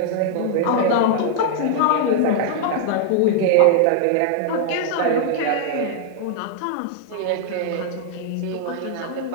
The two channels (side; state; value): both; different; correlation 0.00